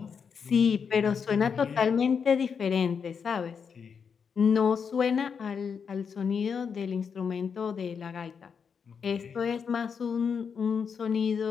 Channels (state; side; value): quieter; right; 6.4 dB